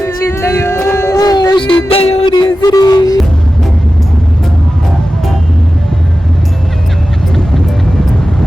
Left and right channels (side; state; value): both; normal; correlation 0.94